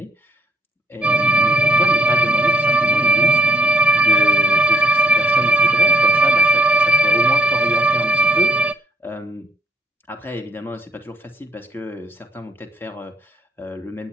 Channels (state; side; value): normal; both; correlation 0.65